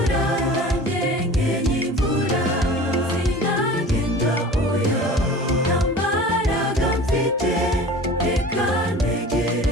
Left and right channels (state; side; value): normal; both; correlation 0.40